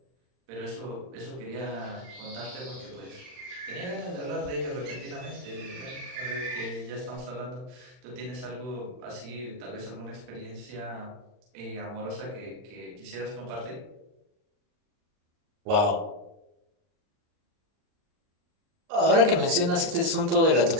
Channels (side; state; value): left; late; 39 ms